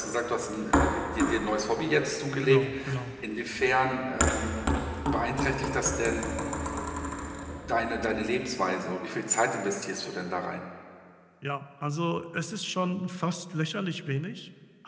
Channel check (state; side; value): identical; both; correlation 1.00